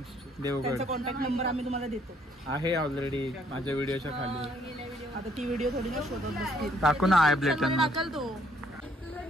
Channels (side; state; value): both; normal; correlation 0.66